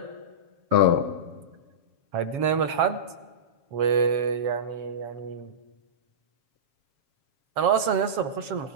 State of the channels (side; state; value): left; late; 7.3 ms